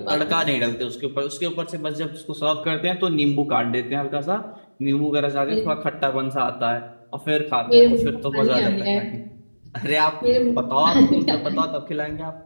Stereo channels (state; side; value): inverted; both; correlation -1.00